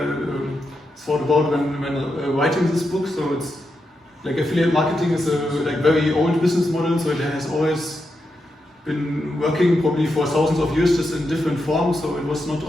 thought about when writing this book. So it's like affiliate marketing is a like very old business model, so it has always been working probably for thousands of years, just in different forms. So it was not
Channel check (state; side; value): normal; both; correlation 0.86